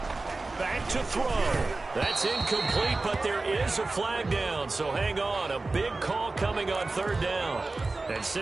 Back to throw. That's incomplete, but there is a flag down, so hang on. A big call coming on third down. And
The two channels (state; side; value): quieter; left; 3.4 dB